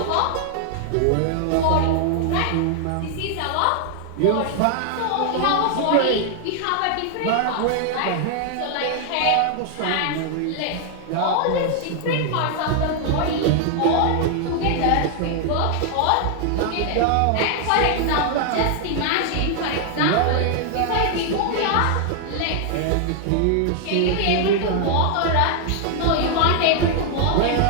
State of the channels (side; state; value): both; different; correlation 0.00